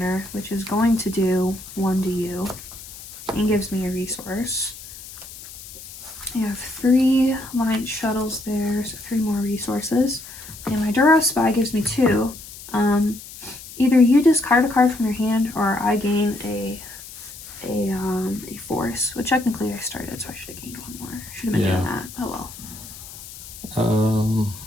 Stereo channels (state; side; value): noise; left; hiss, 15 dB below the sound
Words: which is going to do 1 to you, and gives me a resource. I have 3 light shuttles there, so 3 more resources. And my Duro Spy gives me 2. Either you discard a card from your hand, or I gain a force. Which technically I started, so I should have gained 1 more. Should have been doing that. Oh well.